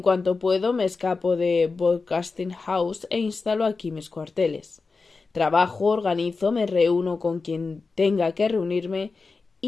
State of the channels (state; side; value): quieter; right; 4.2 dB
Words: cuanto puedo, me escapo de Broadcasting House e instalo aquí mis cuarteles. Trabajo, organizo, me reúno con quien tenga que reunirme